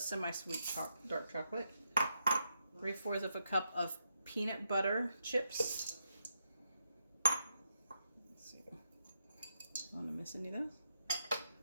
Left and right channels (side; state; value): both; inverted; correlation -0.82